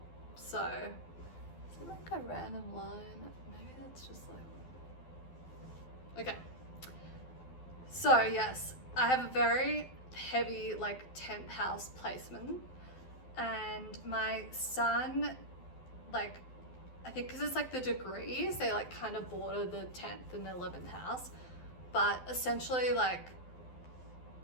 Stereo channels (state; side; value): late; right; 12 ms